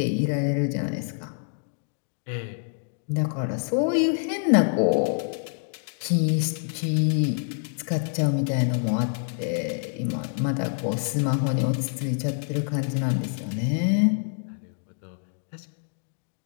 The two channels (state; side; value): silent; right; digital silence